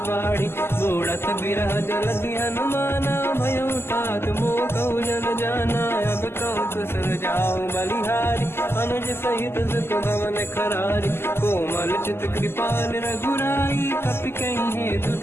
बाढ़ी, बूढ़त बिरह जल हनुमाना, भयो तात मोह कहु जल जाना, अब कहु कुशल जाओ बलिहारी, अनुज सहित सुख भवन खरारी, कोमल चित कृपाल रघुराई, कपि कहीं हेतु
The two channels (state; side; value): late; right; 0.12 ms